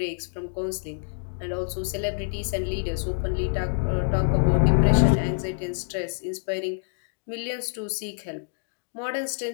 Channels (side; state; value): right; silent; digital silence